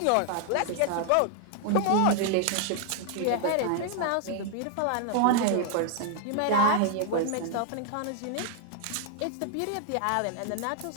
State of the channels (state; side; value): different; both; correlation 0.00